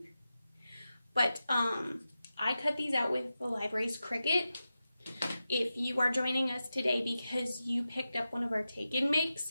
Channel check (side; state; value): both; inverted; correlation -0.92